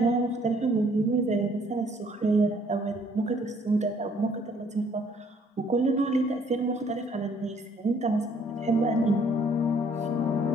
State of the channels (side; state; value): both; normal; correlation 0.62